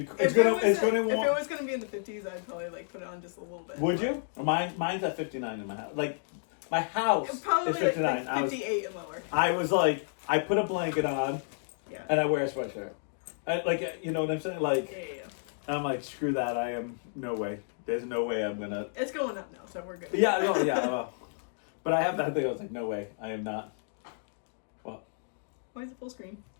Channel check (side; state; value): right; silent; digital silence